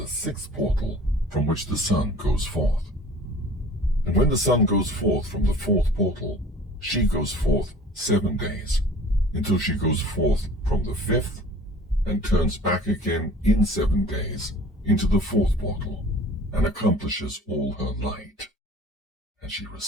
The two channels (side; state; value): both; normal; correlation 0.46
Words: 6th portal from which the sun goes forth. And when the sun goes forth from the 4th portal, she goes forth 7 days, until she goes forth from the 5th, and turns back again in 7 days into the 4th portal, and accomplishes all her light. And she